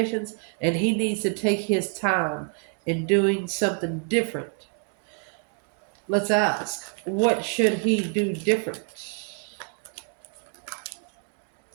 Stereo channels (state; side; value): quieter; left; 39.0 dB